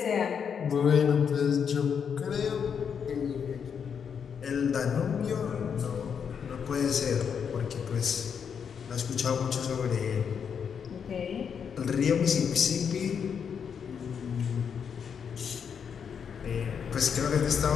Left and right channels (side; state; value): right; quieter; 7.1 dB